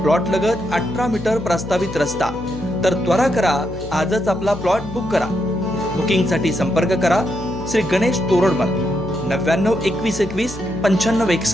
प्लॉट लगत 18 मीटर प्रस्तावित रस्ता. तर त्वरा करा, आजच आपला प्लॉट बुक करा. बुकिंगसाठी संपर्क करा श्री गणेश तोरडमल 99 21 21 95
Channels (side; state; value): left; noise; hum, 13 dB below the sound